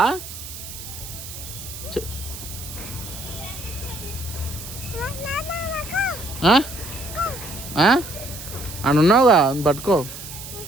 అని ఉన్నావుగా, పట్టుకో,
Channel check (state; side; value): noise; right; hiss, 11 dB below the sound